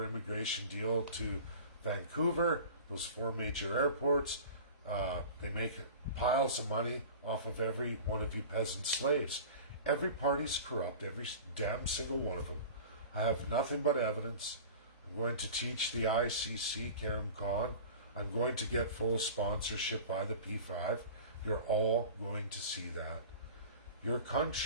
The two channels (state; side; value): inverted; both; correlation -0.38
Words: immigration deal to Vancouver, those 4 major airports. They make piles of money off of every one of you peasant slaves. Every party's corrupt, every damn single one of them. I have nothing but evidence. I'm going to teach the ICC, Karim Khan. I'm going to get full sponsorship by the P5. You're all going to see that. Your